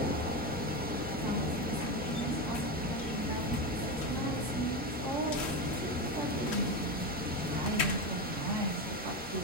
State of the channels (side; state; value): both; normal; correlation 0.17